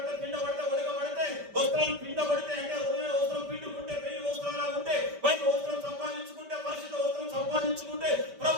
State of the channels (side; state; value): left; late; 5.1 ms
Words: పిండబడితే, ఉడకబడితే, వస్త్రాలు పిండబడితే అంటే ఉదయం వస్త్రం పిండుకుంటే, పెళ్లి వస్త్రాలు ఉంటే, బయట వస్త్రం సంపాదించుకుంటే, పరిశుద్ధ వస్త్రం సంపాదించుకుంటే,